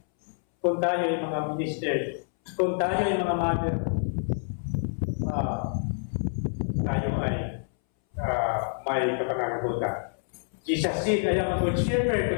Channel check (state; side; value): silent; right; 60 dB below the other